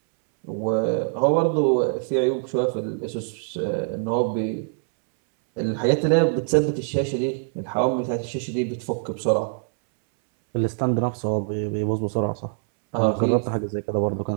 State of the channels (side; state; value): left; silent; 63 dB below the other